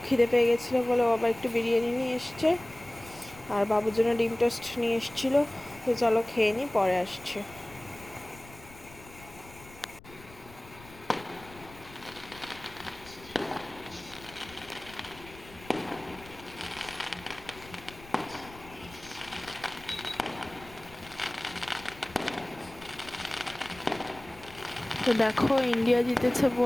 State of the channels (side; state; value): left; noise; rumble, 20 dB below the sound